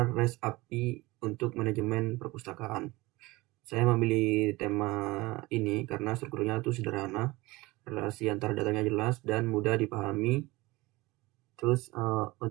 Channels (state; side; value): quieter; left; 21.3 dB